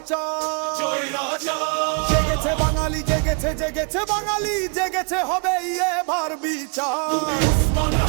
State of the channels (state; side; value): quieter; left; 36.4 dB